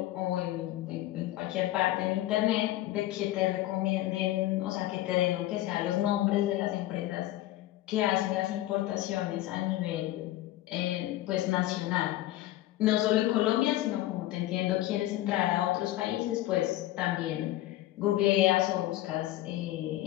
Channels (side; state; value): right; quieter; 15.5 dB